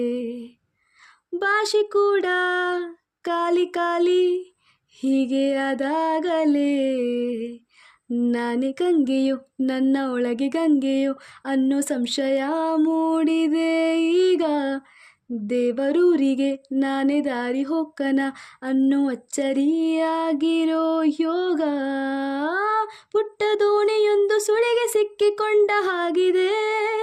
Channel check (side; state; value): both; identical; correlation 1.00